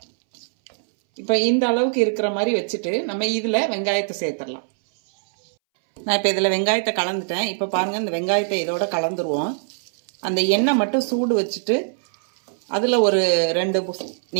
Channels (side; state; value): left; silent; 62 dB below the other